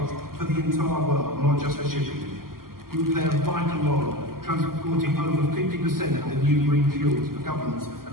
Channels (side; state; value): left; late; 0.92 ms